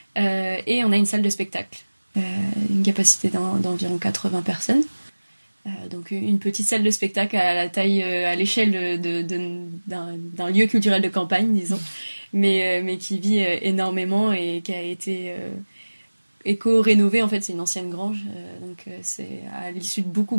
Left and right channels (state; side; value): inverted; both; correlation -1.00